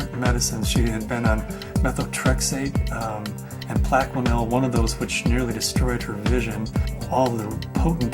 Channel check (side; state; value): both; identical; correlation 1.00